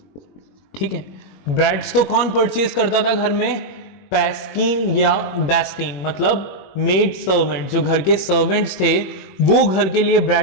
ठीक है, ब्रेड्स तो कौन परचेज करता था घर में? पैस्किन या बेस्टीन, मतलब मेड सर्वेंट, जो घर के सर्वेंट्स थे वो घर के लिए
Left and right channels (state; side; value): late; right; 21 ms